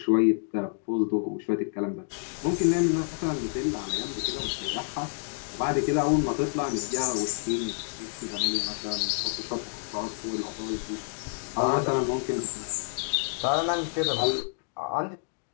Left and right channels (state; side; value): silent; right; digital silence